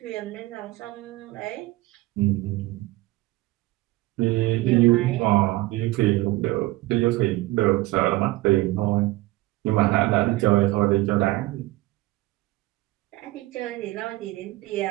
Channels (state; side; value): quieter; left; 19.4 dB